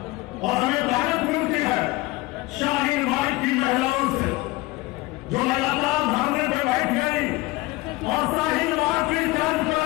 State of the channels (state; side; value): quieter; right; 20.7 dB